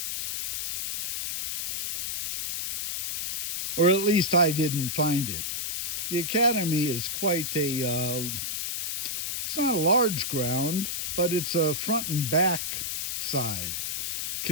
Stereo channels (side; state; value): left; noise; hiss, 1 dB below the sound